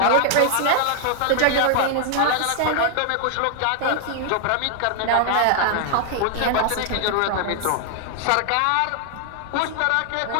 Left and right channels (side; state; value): both; different; correlation 0.00